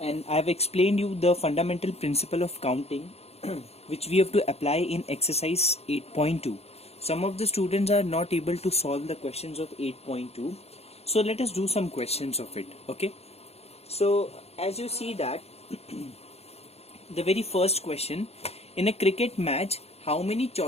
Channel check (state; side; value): late; right; 0.30 ms